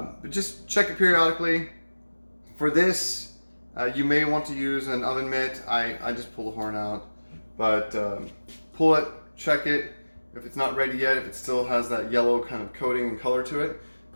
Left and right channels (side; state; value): both; inverted; correlation -1.00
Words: just check it periodically. For this, you may want to use an oven mitt. I just pull the horn out, but pull it, check it. If it's not ready yet, if it still has that yellow kind of coating and color to it,